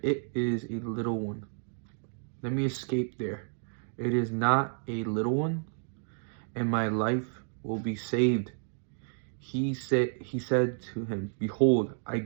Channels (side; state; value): left; silent; digital silence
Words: it is a little one. Let me escape there. It is not a little one, and my life will be saved." He said to him, "Behold, I